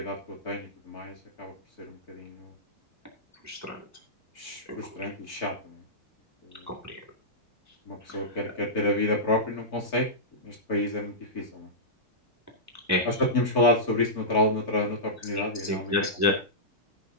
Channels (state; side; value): normal; both; correlation -0.14